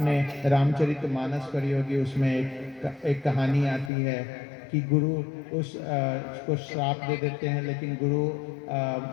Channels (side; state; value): right; drops out; at 3.9 s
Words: रामचरितमानस पढ़ी होगी, उसमें एक कहानी आती है कि गुरु उसको श्राप दे देते हैं, लेकिन गुरु